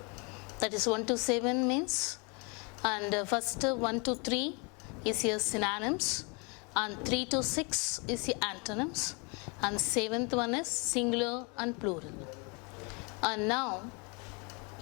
That is 1 to 7 means, and first 1 to 3 is your synonyms, and 3 to 6 is your antonyms, and 7th one is singular and plural. And now,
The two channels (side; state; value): right; quieter; 32.3 dB